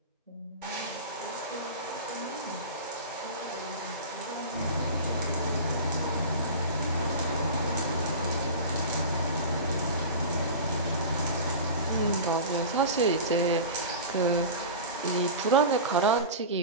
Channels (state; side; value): inverted; both; correlation -0.30